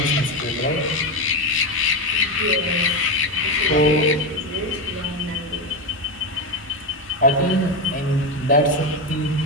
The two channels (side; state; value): both; normal; correlation 0.13